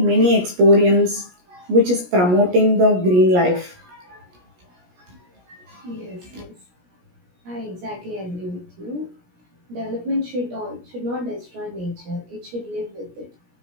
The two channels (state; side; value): late; left; 17 ms